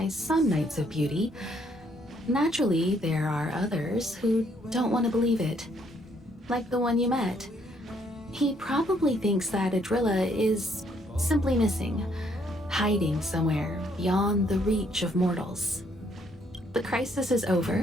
some Knights of Beauty. Naturally, there are others who don't want to believe it. Like the one you met. He probably thinks that Adrilla is simply missing, hiding somewhere beyond the reach of mortals. The crisis is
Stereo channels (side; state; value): both; normal; correlation 0.69